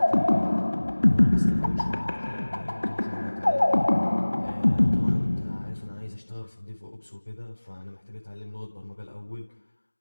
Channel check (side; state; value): both; inverted; correlation -1.00